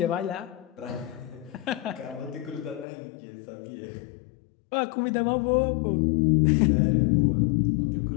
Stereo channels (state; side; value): drops out; right; at 2.9 s